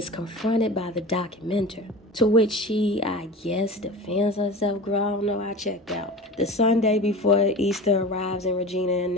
confronted by the documenter, to which she, I guess, defends herself. Girl, I don't know, I checked out. The Sunday before Easter arrives and Regina and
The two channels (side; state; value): both; normal; correlation 0.33